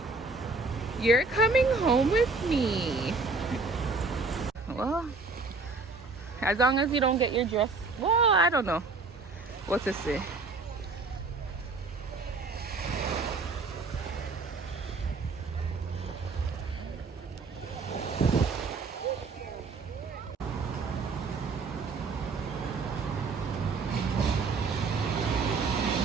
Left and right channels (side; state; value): left; quieter; 4.0 dB